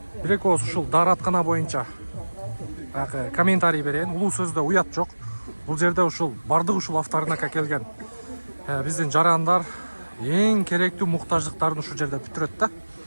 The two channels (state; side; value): inverted; both; correlation -1.00